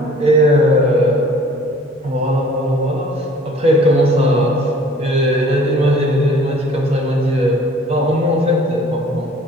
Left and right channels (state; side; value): normal; both; correlation 0.51